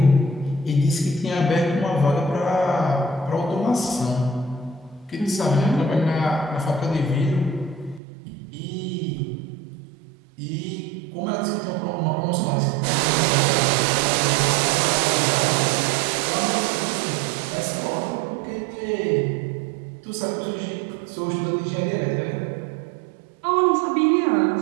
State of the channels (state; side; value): drops out; left; at 8.0 s